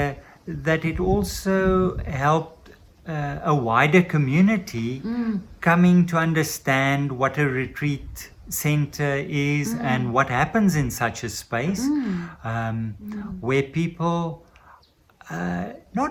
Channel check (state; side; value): identical; both; correlation 1.00